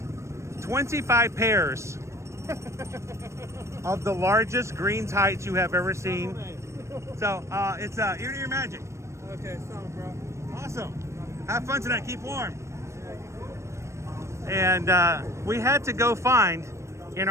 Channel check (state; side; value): late; left; 0.14 ms